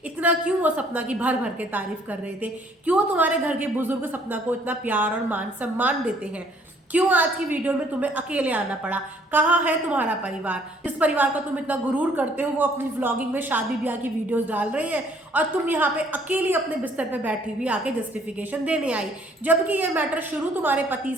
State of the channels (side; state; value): both; normal; correlation 0.61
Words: इतना क्यों वो सपना की भर भर के तारीफ कर रहे थे, क्यों तुम्हारे घर के बुजुर्ग सपना को इतना प्यार और मान सम्मान देते हैं, क्यों आज की वीडियो में तुम्हें अकेले आना पड़ा, कहाँ है तुम्हारा परिवार, जिस परिवार का तुम इतना गुरूर करते हो वो अपनी व्लॉगिंग में शादी ब्याह की वीडियोस डाल रहे हैं और तुम यहाँ पे अकेली अपने बिस्तर पे बैठी हुई आके जस्टिफिकेशन देने आई। जबकि ये मैटर शुरू तुम्हारे पति